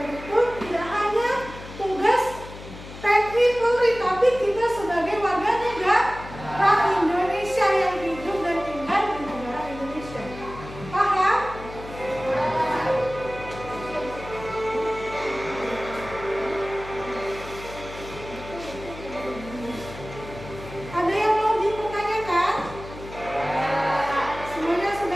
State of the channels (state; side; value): noise; left; hum, 14 dB below the sound